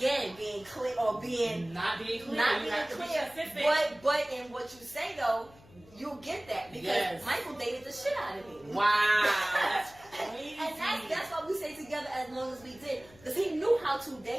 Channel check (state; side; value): noise; left; hum, 24 dB below the sound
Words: being clear or being not being clear. But in what you say though, you'll get that because Michael dated the shit out of me. Wow. crazy. And that's why we stayed together as long as we did. Because he knew how to